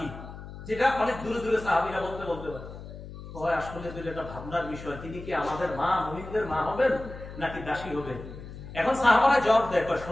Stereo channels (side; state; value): left; noise; hum, 13 dB below the sound